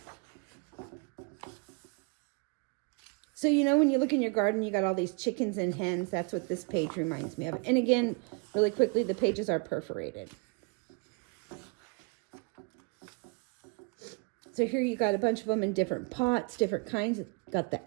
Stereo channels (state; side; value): quieter; left; 32.0 dB